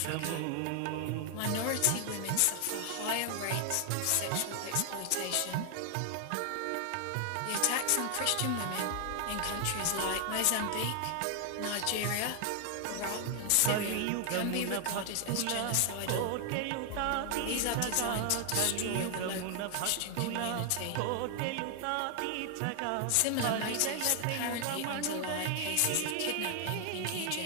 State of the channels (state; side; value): different; both; correlation 0.00